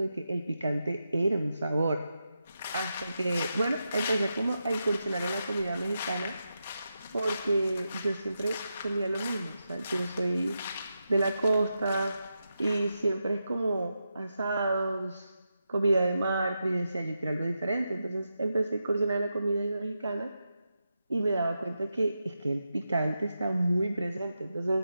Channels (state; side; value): inverted; both; correlation -0.87